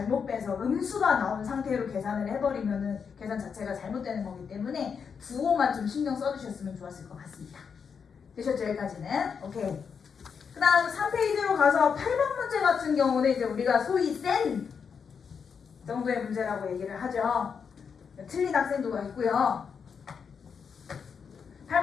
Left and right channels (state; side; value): quieter; right; 6.4 dB